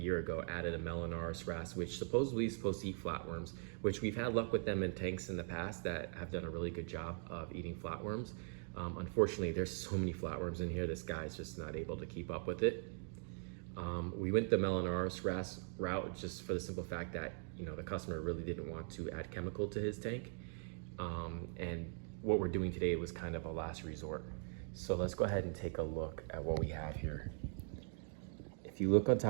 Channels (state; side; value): silent; left; 50 dB below the other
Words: ago, added a Melanoris wrasse, which supposedly is supposed to eat flatworms, which we've had luck with them in tanks in the past that have done a really good job of eating flatworms. Unfortunately, there's so many flatworms in here, this guy's just not able to keep up with it. We went the Melanoris wrasse route just for the simple fact that, you know, the customer really didn't want to add chemical to his tank. And what we're doing today was kind of a last resort. So let's go ahead and take a look at what we have here. If you look on